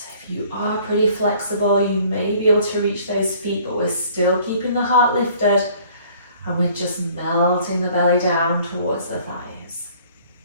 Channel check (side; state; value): both; inverted; correlation -0.55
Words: If you are pretty flexible, you may be able to reach those feet, but we're still keeping the heart lifted, and we're just melting the belly down towards the thighs.